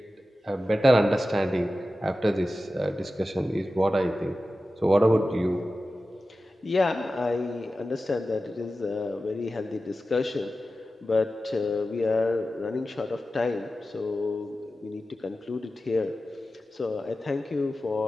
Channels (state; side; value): normal; both; correlation 0.94